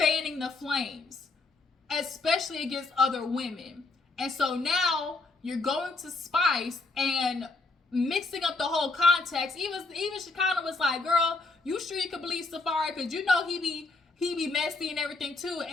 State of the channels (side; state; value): right; quieter; 3.6 dB